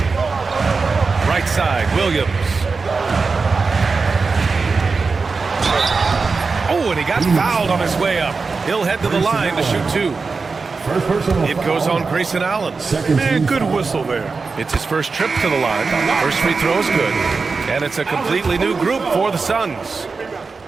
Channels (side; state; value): left; quieter; 4.4 dB